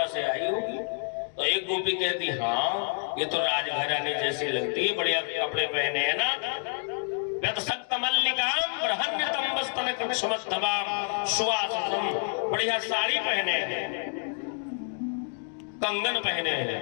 से आई होगी, तो एक गोपी कहती हाँ ये तो राजघरानी जैसी लगती है, बढ़िया कपड़े पहने है ना। बढ़िया साड़ी पहने हैं, कंगन पहने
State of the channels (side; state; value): right; silent; 59 dB below the other